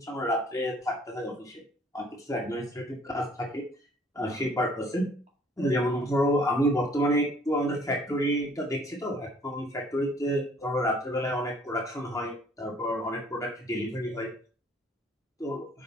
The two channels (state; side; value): normal; both; correlation 0.58